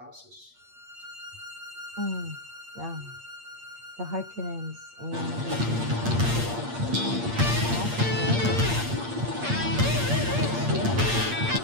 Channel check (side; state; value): left; late; 8.6 ms